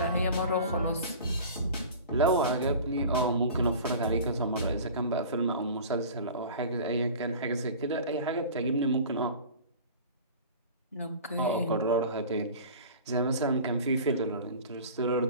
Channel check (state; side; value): inverted; both; correlation -0.39